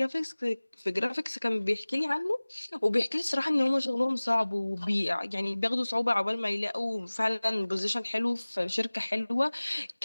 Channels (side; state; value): both; inverted; correlation -1.00